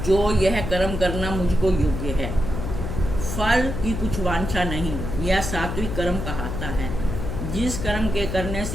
जो यह कर्म करना मुझको योग्य है, फल की कुछ वांछा नहीं, यह सात्विक कर्म कहता है। जिस कर्म के करने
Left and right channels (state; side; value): noise; left; hum, 4 dB below the sound